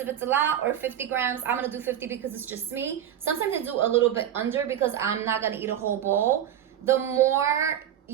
it's a lot, or 50 grams. I'm gonna do 50 because it's just me. Sometimes I do a little bit under because I'm not gonna eat a whole bowl. The more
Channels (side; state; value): left; quieter; 10.4 dB